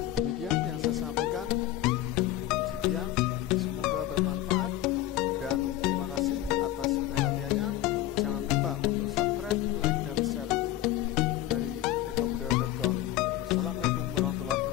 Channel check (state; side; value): quieter; right; 14.1 dB